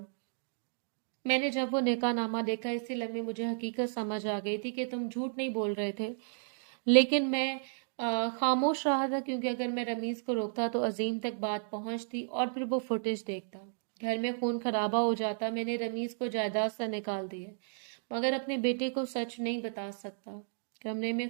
मैंने जब वो निकाहनामा देखा, इसी लम्हे मुझे हकीकत समझ आ गई थी कि तुम झूठ नहीं बोल रहे थे, लेकिन मैं खामोश रहा था, क्योंकि अगर मैं रमीज को रोकता तो अजीम तक बात पहुंचती और फिर वो फुटेज देखता, घर में खून खराबा हो जाता। मैंने रमीज को जायदाद से निकाल दिया, मगर अपने बेटे को सच नहीं बता सकता। कमरे में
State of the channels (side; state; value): left; silent; digital silence